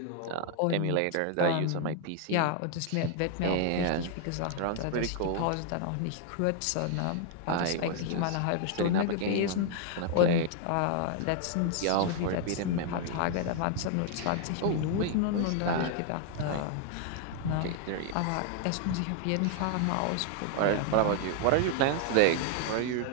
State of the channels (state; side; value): different; both; correlation 0.00